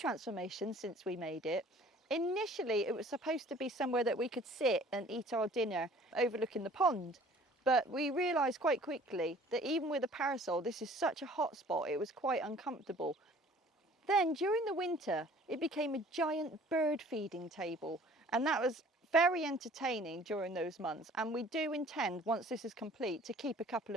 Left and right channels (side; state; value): both; normal; correlation 0.51